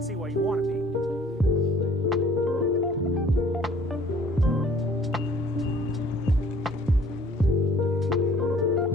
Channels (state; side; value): normal; both; correlation 0.54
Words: see why you want to be.